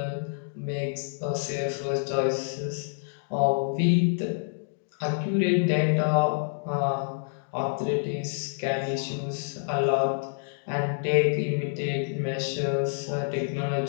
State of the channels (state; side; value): silent; right; digital silence